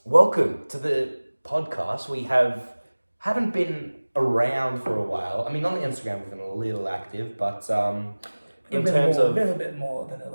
welcome to the podcast. We haven't been around for a while. I mean, on the Instagram we've been a little active, but in terms of a little bit more than a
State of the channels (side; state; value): both; inverted; correlation -1.00